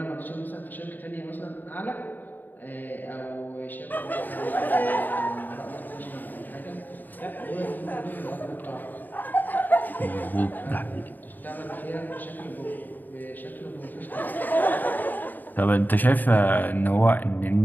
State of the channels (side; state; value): right; late; 0.088 ms